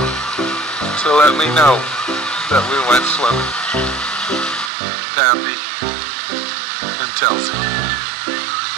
to let me know that we went swimming. Pappy and Telzy.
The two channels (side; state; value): left; drops out; at 4.7 s